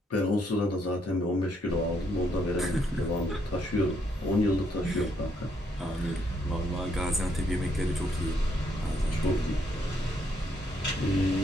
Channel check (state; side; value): normal; both; correlation 0.73